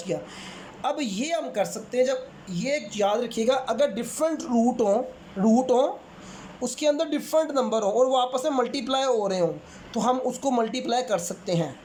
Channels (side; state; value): both; identical; correlation 1.00